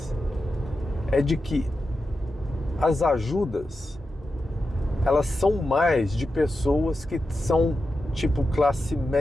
é de que as ajudas, elas são mais de pessoas que são tipo classe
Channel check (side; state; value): both; normal; correlation 0.90